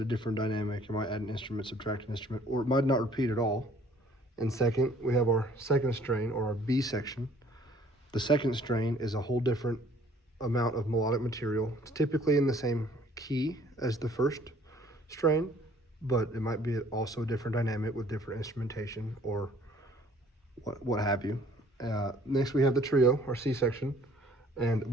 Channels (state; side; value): normal; both; correlation 0.57